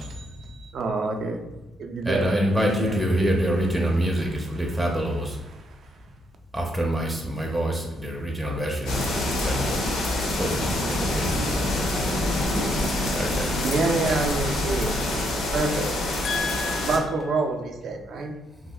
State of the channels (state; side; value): normal; both; correlation 0.75